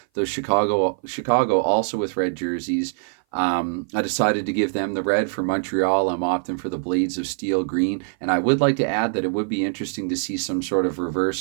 Though Chicago also with red jerseys. I decided to give them the red. For Montreal, I'm opting for the Blades of Steel green. And I would like to add that it would be interesting to see some sort of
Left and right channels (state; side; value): silent; left; 58 dB below the other